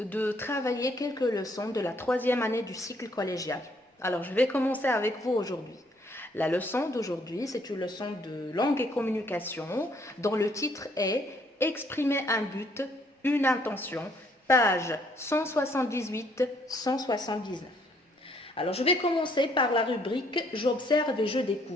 travailler quelques leçons de la troisième année du cycle collégial. Alors, je vais commencer avec vous aujourd'hui. La leçon d'aujourd'hui, c'est une leçon de langue et communication dont le titre est « Exprimer un but, une intention », page 178-179. Alors, je vais commencer par la rubrique « J'observe et je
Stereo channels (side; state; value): both; normal; correlation 0.66